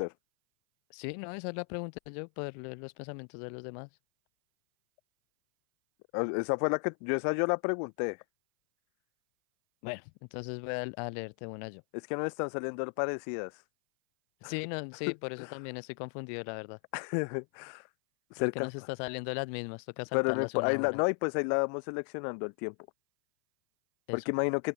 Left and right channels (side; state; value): right; silent; 54 dB below the other